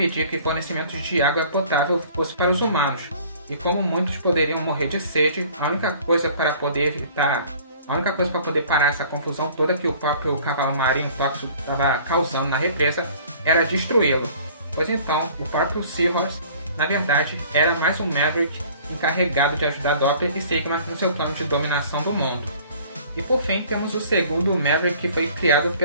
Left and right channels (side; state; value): both; inverted; correlation -0.51